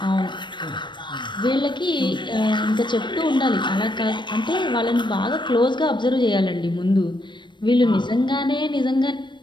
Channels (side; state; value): right; late; 0.22 ms